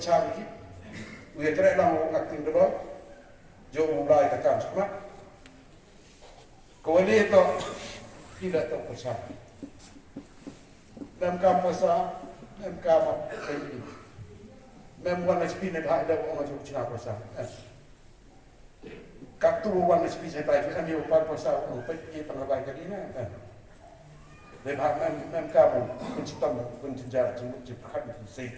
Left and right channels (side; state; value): both; identical; correlation 1.00